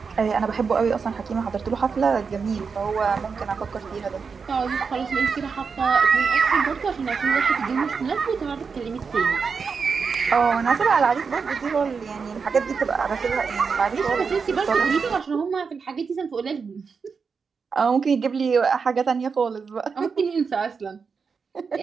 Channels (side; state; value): left; quieter; 5.5 dB